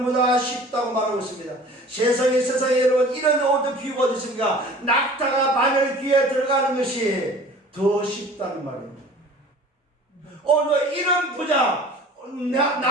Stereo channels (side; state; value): both; normal; correlation 0.45